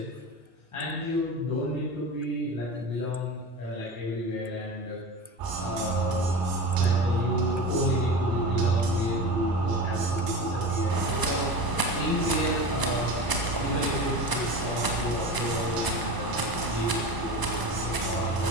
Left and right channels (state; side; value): late; left; 1.0 ms